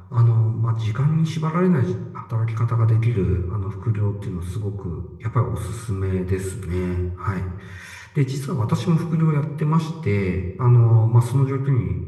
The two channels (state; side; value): identical; both; correlation 1.00